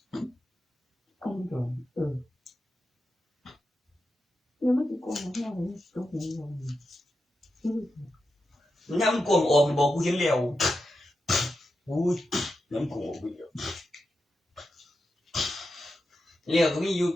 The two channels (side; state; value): both; normal; correlation 0.88